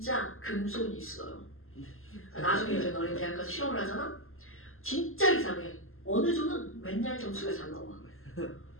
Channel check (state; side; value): late; right; 0.61 ms